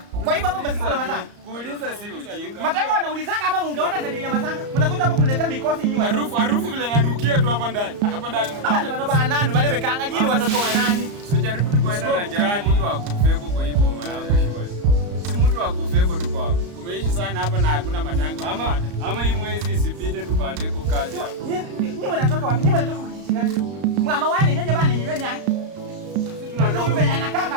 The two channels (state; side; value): late; left; 34 ms